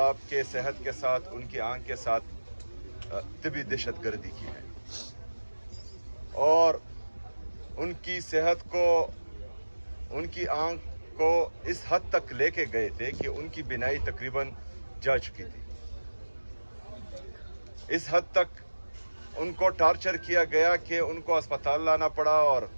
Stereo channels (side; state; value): both; inverted; correlation -1.00